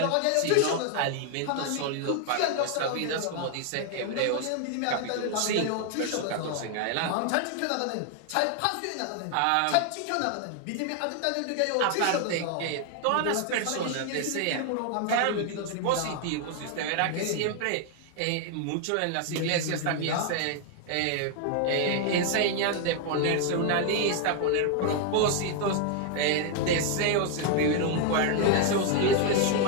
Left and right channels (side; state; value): both; different; correlation 0.00